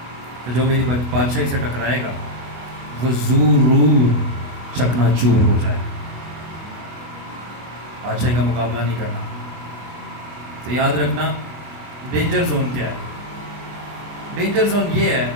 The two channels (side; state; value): left; late; 24 ms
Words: کہ جو میری بادشاہی سے ٹکرائے گا وہ ضرور چکنا چور ہو جائے. بادشاہی کا مقابلہ نہیں کرنا. تو یاد رکھنا ڈینجر زون کیا ہے. ڈینجر زون یہ ہے